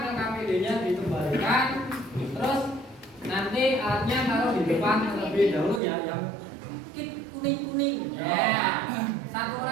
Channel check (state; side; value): drops out; left; at 5.8 s